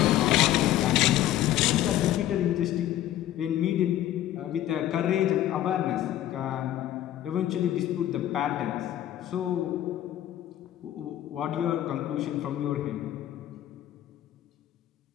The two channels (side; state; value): right; quieter; 12.7 dB